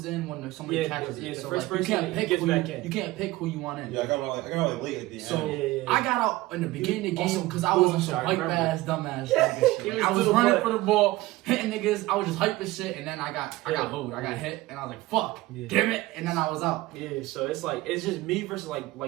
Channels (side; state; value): left; quieter; 18.6 dB